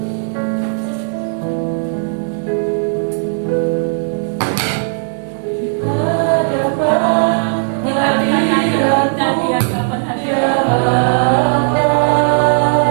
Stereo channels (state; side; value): silent; left; digital silence